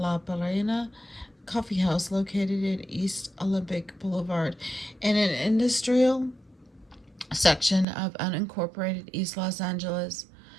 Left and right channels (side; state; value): left; drops out; at 7.9 s